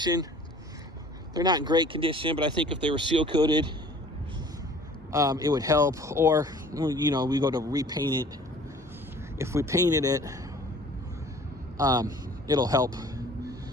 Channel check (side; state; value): both; normal; correlation 0.50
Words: They're not in great condition, but I think if they were seal coated, it would help. Or, you know, we go to repaint it. If we painted it, it'll help